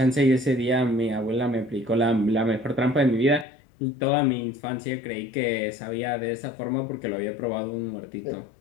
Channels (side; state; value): right; drops out; at 3.5 s